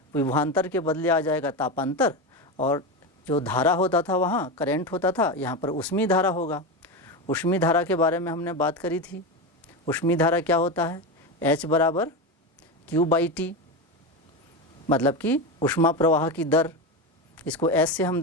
विभवांतर के बदले आ जाएगा तापांतर, और जो धारा होता था वहाँ करंट होता था, यहाँ पर ऊष्मीय धारा होगा। ऊष्मीय धारा के बारे में हमने बात करी थी। ऊष्मीय धारा क्या होता है? H बराबर Q/T, मतलब कि ऊष्मा प्रवाह की दर, इसको S से हम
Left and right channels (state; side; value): normal; both; correlation 0.17